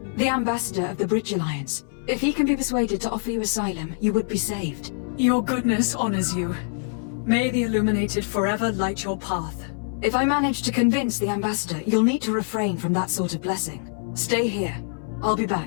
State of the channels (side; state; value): right; silent; 61 dB below the other